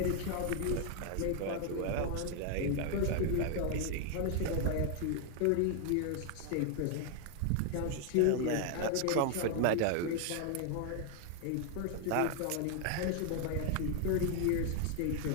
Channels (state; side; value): different; both; correlation 0.00